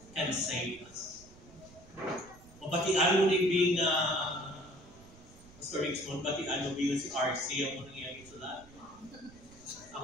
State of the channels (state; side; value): noise; right; rumble, 22 dB below the sound